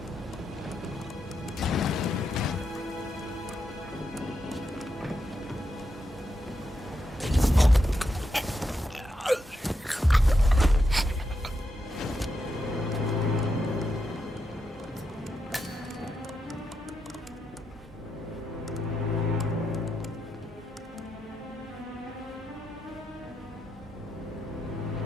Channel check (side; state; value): both; normal; correlation 0.84